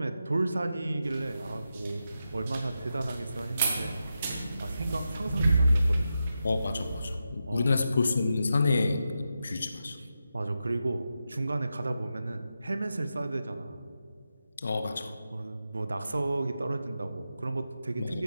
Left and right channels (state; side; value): inverted; both; correlation -0.89